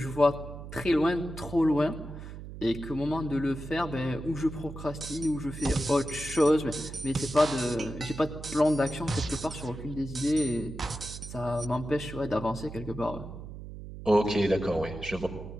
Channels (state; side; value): noise; right; hum, 11 dB below the sound